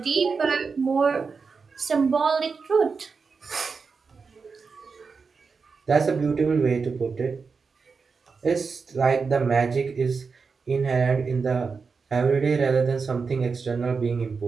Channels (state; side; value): quieter; left; 5.0 dB